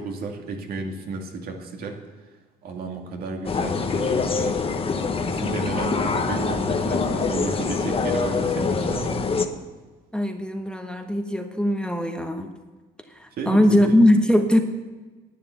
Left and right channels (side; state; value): both; normal; correlation 0.74